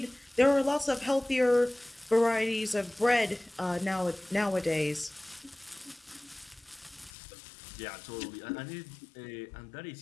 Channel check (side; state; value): right; drops out; at 7.1 s